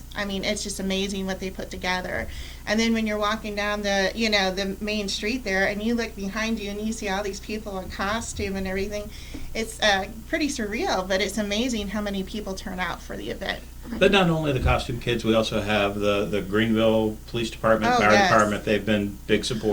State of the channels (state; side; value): identical; both; correlation 1.00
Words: I mean, it's just amazing what they put together. And then when you're walking down the main street there, and you look behind you and you see all these people in costume and everything, it's pretty surreal, but it's amazing how many people turn out for the event. But not only the costume kids, we also have the Greenville Police Department, Fire Department. They've been big